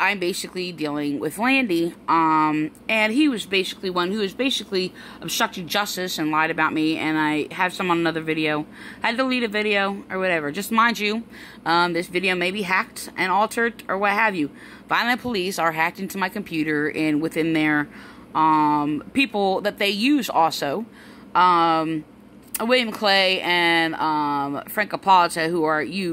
basically dealing with Landi, and he was basically one who was basically obstructing justice and lied about me, and I have some on another video. I had to delete a video or whatever. Just mind you, this video may be hacked and altered or what have you. Vineland Police are hacked into my computer and within their people that they use also. William Clay and Frank Apollo, who are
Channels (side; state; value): both; identical; correlation 1.00